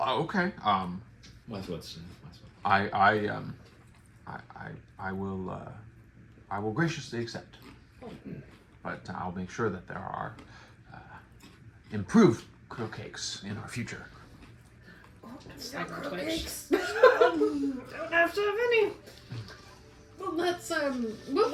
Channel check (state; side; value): identical; both; correlation 1.00